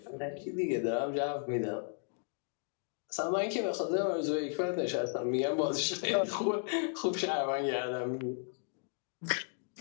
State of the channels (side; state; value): right; silent; 55 dB below the other